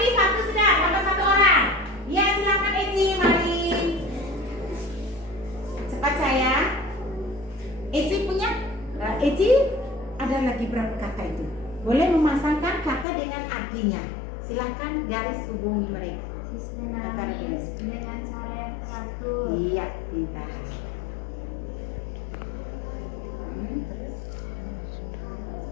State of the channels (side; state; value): right; drops out; at 13.1 s